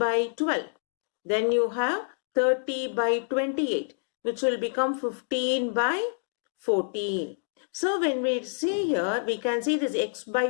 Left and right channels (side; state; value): right; silent; digital silence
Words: 12. Then you have 30 by 28. Which will become 15 by 14. So when we see here, we can see this x